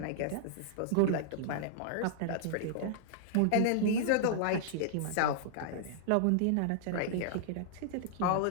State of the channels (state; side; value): different; both; correlation -0.01